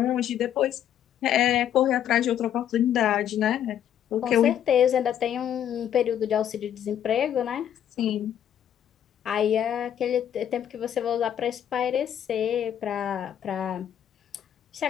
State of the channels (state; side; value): quieter; right; 10.0 dB